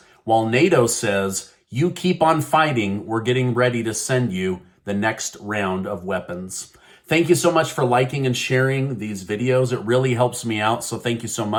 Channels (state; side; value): identical; both; correlation 1.00